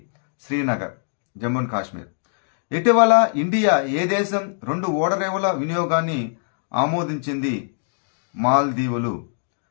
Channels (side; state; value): right; silent; digital silence